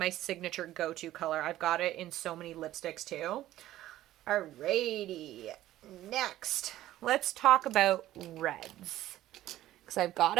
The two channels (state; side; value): quieter; left; 14.3 dB